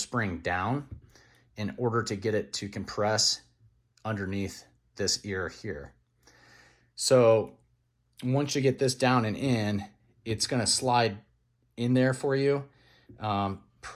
down in order to get it to compress underneath this ear here. So once you get this down and in, it's going to slide in there for you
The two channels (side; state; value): both; identical; correlation 1.00